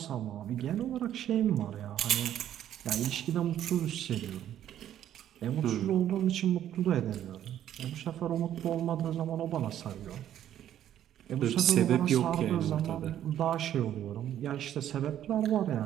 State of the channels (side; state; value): left; quieter; 11.1 dB